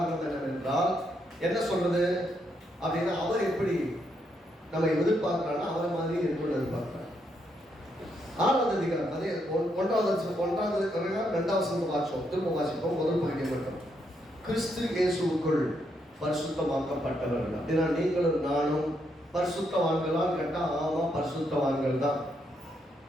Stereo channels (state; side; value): normal; both; correlation 0.77